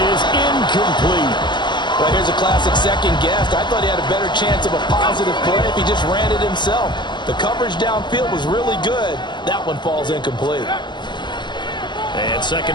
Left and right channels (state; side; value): late; right; 0.22 ms